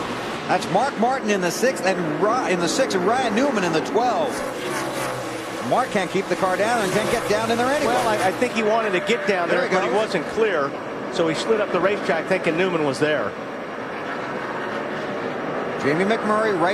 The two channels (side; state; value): both; identical; correlation 1.00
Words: That's Mark Martin in the 6th, and in the 6th, and Ryan Newman in the 12th. Mark can't keep the car down and can't get down in there anyway. Well, I think he wanted to get down there, but he wasn't clear. So he slid up the racetrack thinking Newman was there. Jamie McMurray